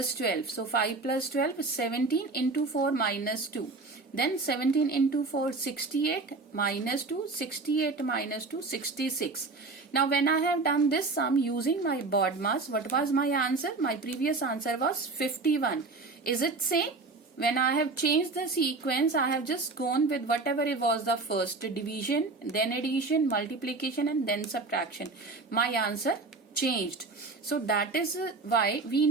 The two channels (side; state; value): left; quieter; 3.7 dB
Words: 12. So 5 plus 12 is 17 into 4 minus 2. Then 17 into 4, 68 minus 2, 68 minus 2, 66. Now when I have done this sum using my BODMAS, what was my answer? My previous answer was 51. Is it same? When I have changed the sequence, I have just gone with whatever it was the first, division, then addition, multiplication and then subtraction. My answer changed. So that is why we